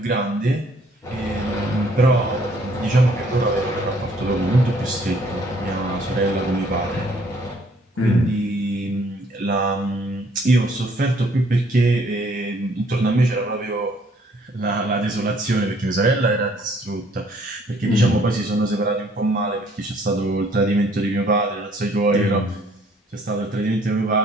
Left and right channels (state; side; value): normal; both; correlation 0.62